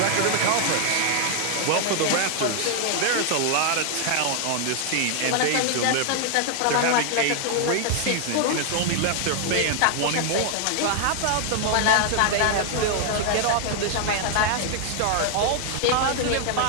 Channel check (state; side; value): different; both; correlation 0.00